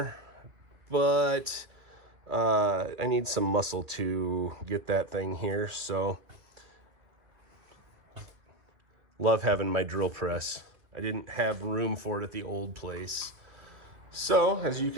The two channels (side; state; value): left; late; 2.8 ms